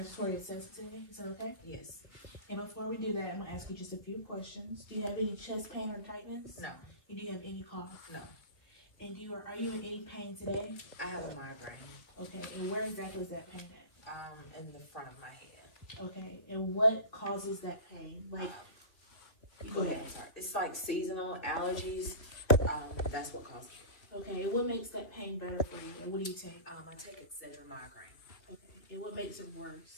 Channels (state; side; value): late; right; 3.1 ms